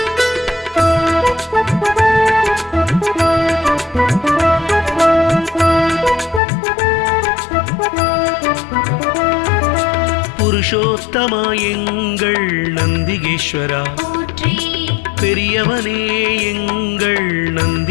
புருஷோத்தமா எங்கள் நந்திகேஸ்வரா, போற்றி பெரியவனே எங்கள்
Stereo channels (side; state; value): right; drops out; at 6.4 s